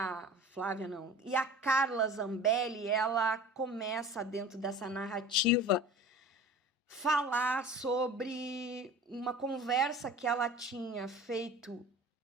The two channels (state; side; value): normal; both; correlation 0.40